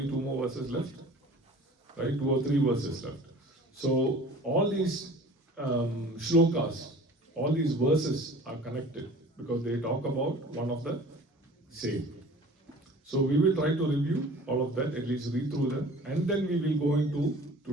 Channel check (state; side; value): normal; both; correlation 0.44